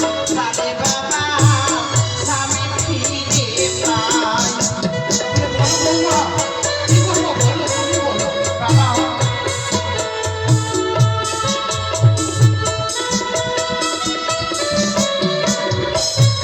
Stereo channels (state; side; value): identical; both; correlation 1.00